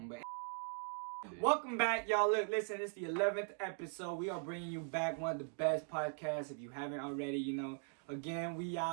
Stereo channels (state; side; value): silent; left; 51 dB below the other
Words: But welcome back, y'all. Look, listen, it's the 11th episode. We are bringing you back one of the best podcasts. If you haven't already, you know. Again, we